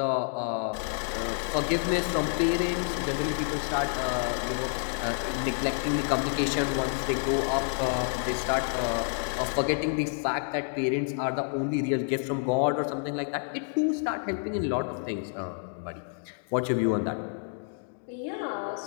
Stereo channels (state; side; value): silent; right; 57 dB below the other